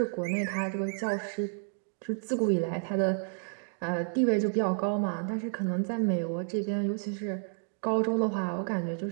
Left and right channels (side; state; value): left; silent; 55 dB below the other